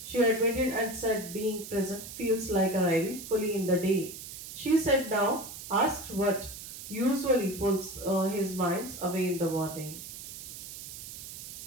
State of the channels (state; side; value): noise; right; hiss, 11 dB below the sound